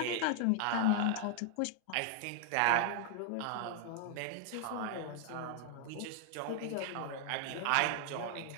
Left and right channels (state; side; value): different; both; correlation 0.00